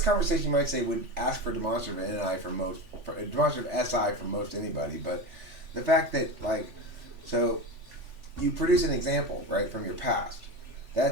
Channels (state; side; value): late; left; 3.4 ms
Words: conversation you might say would ask for demonstrative NI for demonstrative SI from most anybody, but the fact that so you produce an example right from your past.